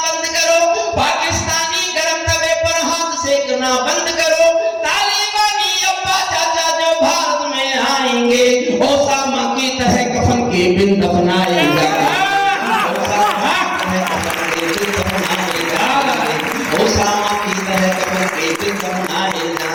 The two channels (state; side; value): identical; both; correlation 1.00